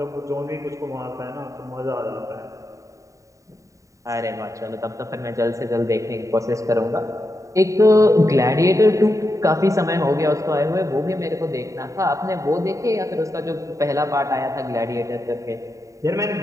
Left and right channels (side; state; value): left; late; 0.16 ms